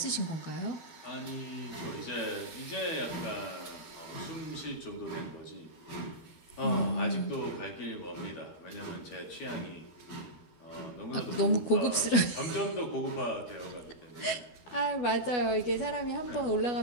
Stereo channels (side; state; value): right; late; 12 ms